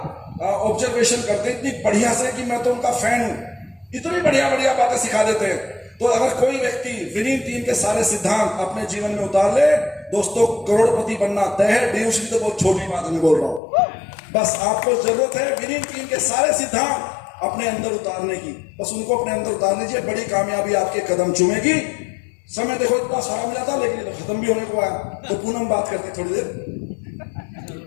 ऑब्जर्वेशन करते इतनी बढ़िया से कि मैं तो उनका फैन हूं। इतनी बढ़िया बढ़िया बातें सिखा देते हैं। तो अगर कोई व्यक्ति विनिंग टीम के सारे सिद्धांत अपने जीवन में उतार ले, दोस्तों करोड़पति बनना तय है। बेहोशी तो बहुत छोटी बात मैं बोल रहा हूं। बस आपको जरूरत है विनिंग टीम के सारे सिद्धांत अपने अंदर उतारने की। बस उनको अपने अंदर उतार लीजिए, बड़ी कामयाबी आपके कदम चूमेगी। समय देखो इतना सारा मिला था, लेकिन तो खत्म भी होने को आया। तो पूनम बात करते थोड़ी देर।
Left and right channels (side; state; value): right; drops out; at 13.6 s